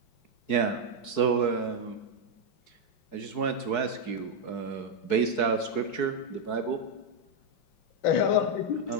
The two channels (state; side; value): late; right; 4.7 ms